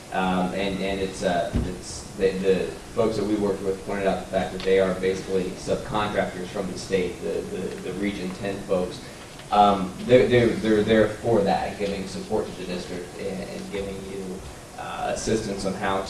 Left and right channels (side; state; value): both; identical; correlation 1.00